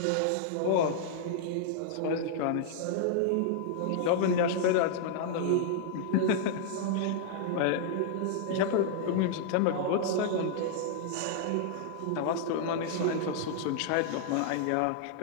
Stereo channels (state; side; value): different; both; correlation -0.01